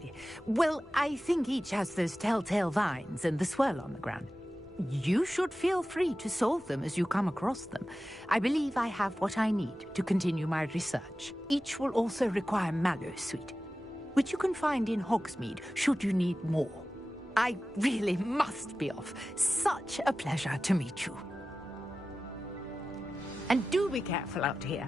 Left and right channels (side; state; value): both; normal; correlation 0.95